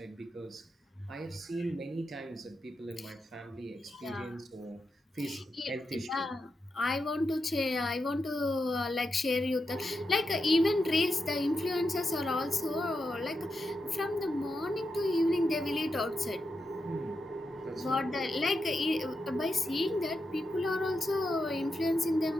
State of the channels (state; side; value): normal; both; correlation 0.87